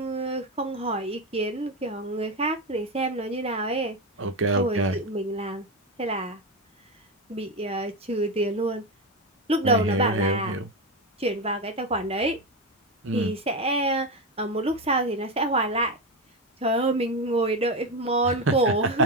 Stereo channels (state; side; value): normal; both; correlation 0.14